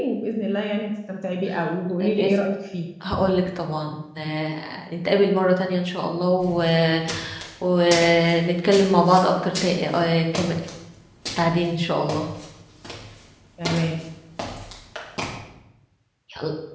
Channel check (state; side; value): identical; both; correlation 1.00